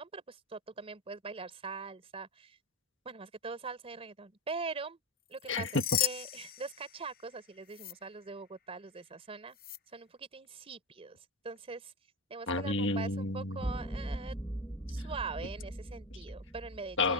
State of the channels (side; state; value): both; normal; correlation 0.19